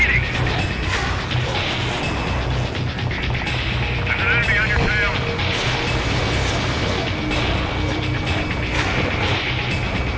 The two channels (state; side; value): identical; both; correlation 1.00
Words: There's an enemy on your tail.